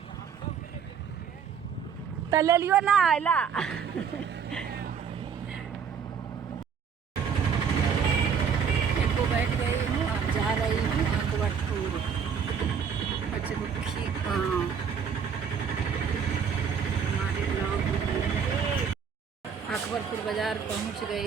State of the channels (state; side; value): quieter; left; 6.9 dB